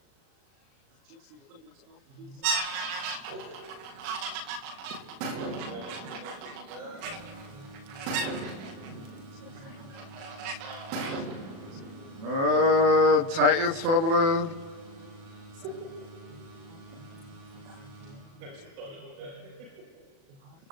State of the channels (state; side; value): late; left; 37 ms